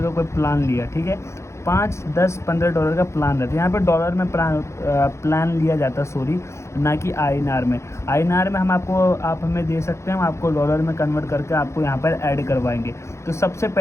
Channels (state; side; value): late; right; 0.14 ms